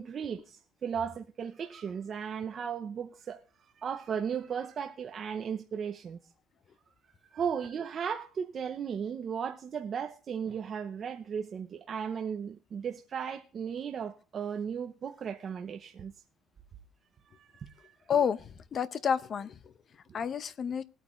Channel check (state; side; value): normal; both; correlation 0.70